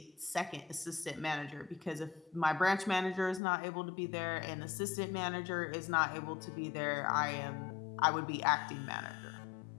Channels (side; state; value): right; drops out; at 3.4 s